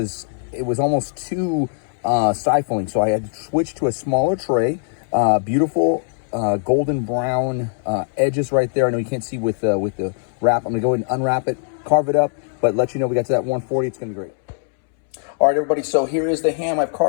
it was almost too stifling, so I had to switch to a smaller tray. Beautiful golden brown edges right there. I know you can't see with the wrap. I'm gonna go ahead and unwrap it, carve it up, but let you know we got to that 140. It's gonna be great. All right, everybody, so here is the ham. I've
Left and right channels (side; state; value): right; silent; 65 dB below the other